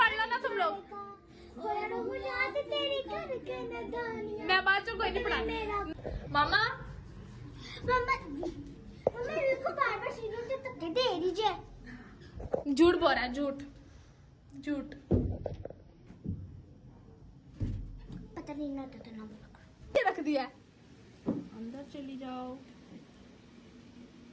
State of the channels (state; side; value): identical; both; correlation 1.00